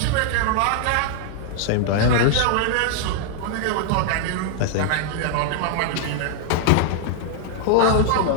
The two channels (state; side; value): different; both; correlation -0.01